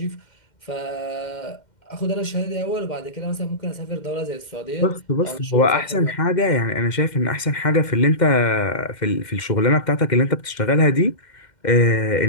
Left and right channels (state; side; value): late; right; 2.1 ms